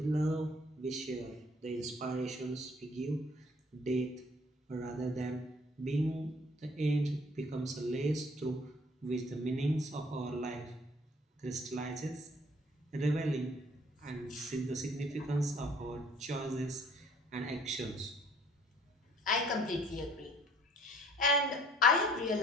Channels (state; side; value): normal; both; correlation 0.57